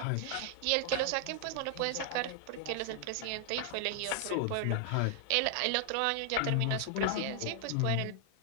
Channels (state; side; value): different; both; correlation 0.00